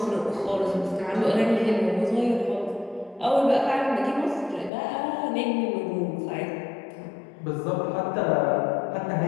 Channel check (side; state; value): right; drops out; at 4.7 s